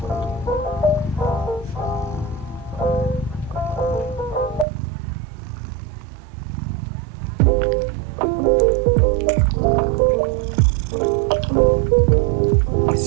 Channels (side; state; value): left; drops out; at 4.7 s